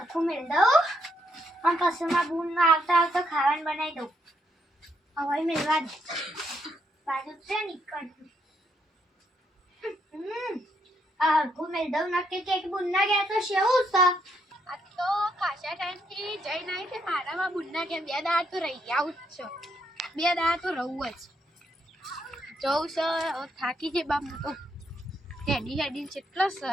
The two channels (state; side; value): normal; both; correlation 0.76